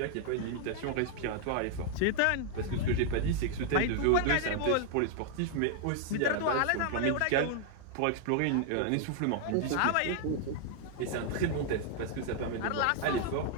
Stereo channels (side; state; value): both; different; correlation 0.00